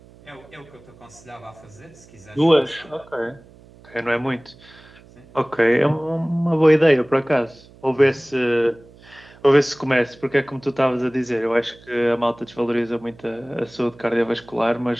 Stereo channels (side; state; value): right; noise; hum, 24 dB below the sound